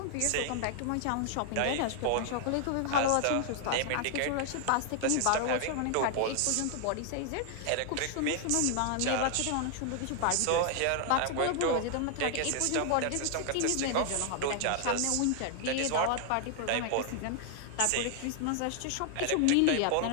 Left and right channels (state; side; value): different; both; correlation 0.00